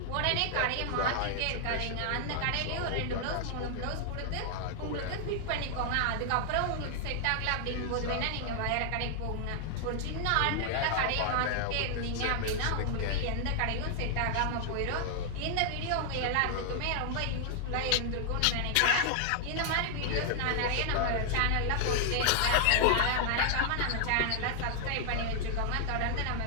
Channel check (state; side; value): different; both; correlation 0.00